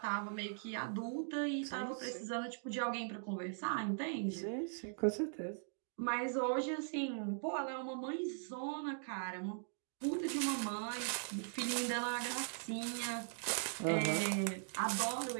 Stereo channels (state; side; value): silent; left; digital silence